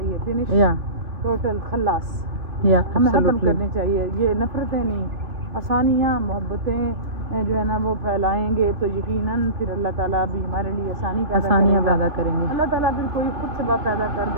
finish, total खल्लास, हमें खत्म करनी चाहिए। ये नफरतें नहीं, आसानियाँ, मोहब्बतें जो है ना वो फैलाएंगे तो यकीनन फिर अल्लाह ताला भी हमारे लिए आसानियाँ पैदा करेंगे। अल्लाह ताला फिर कोई खुद सबब पैदा कर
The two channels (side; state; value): left; late; 2.9 ms